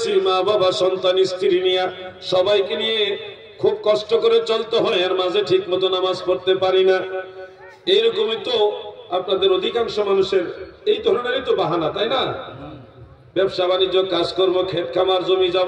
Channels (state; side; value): identical; both; correlation 1.00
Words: মা বাবা সন্তান স্ত্রী নিয়ে সবাইকে নিয়ে খুব কষ্ট করে চলতে হয়, এর মাঝে ঠিক মতো নামাজ পড়তে পারি না। এইরকমই তো আপনাদের অধিকাংশ মানুষের এই ধরনেরই তো বাহানা, তাই না? ব্যবসা বাণিজ্য, কাজকর্ম, ক্ষেত খামার, জমি